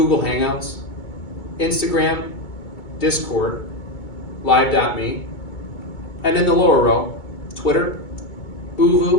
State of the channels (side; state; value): right; late; 2.2 ms